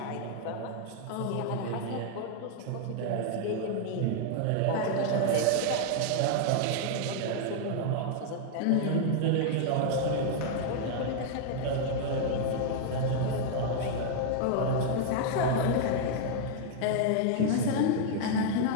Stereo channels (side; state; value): both; different; correlation 0.00